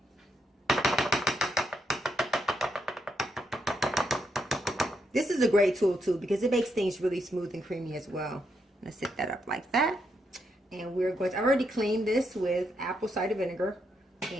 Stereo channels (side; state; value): both; normal; correlation 0.80